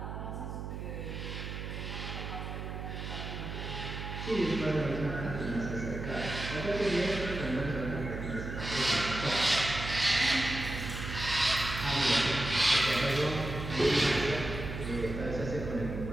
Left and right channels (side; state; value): right; noise; hum, 6 dB below the sound